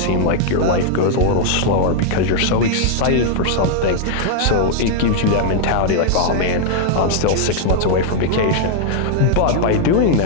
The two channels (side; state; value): both; different; correlation 0.00